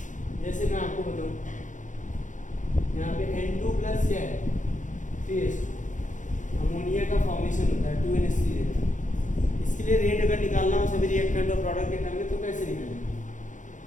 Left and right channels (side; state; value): right; late; 0.37 ms